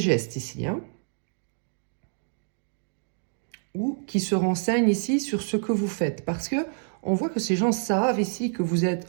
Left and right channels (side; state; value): left; silent; 60 dB below the other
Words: ici, hein, ou qui se renseignent ici sur ce que vous faites. Parce que on voit que ces gens savent ici que vous